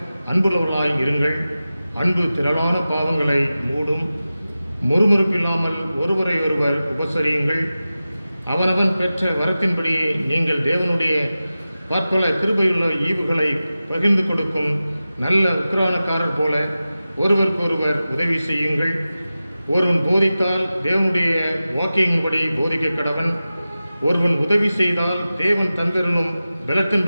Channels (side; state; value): both; inverted; correlation -0.95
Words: அன்புள்ளவர்களாய் இருங்கள். அன்பு திரளான பாவங்களை மூடும். முறுமுறுப்பில்லாமல் ஒருவரை ஒருவர் உபசரியுங்கள். அவனவன் பெற்ற வரத்தின்படியே நீங்கள் தேவனுடைய பற்பல கிருபையுள்ள ஈவுகளை பகிர்ந்து கொடுக்கும் நல்ல உக்கிரானக்காரர் போல ஒருவருக்கொருவர் உதவி செய்யுங்கள். ஒருவன் போதித்தால் தேவனுடைய வாக்கியங்களின்படி போதிக்க கடவன். ஒருவன் உதவி செய்தால் தேவன் தந்தருளும்